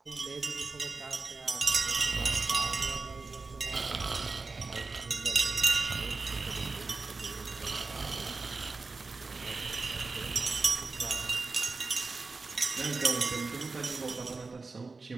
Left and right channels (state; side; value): quieter; left; 4.0 dB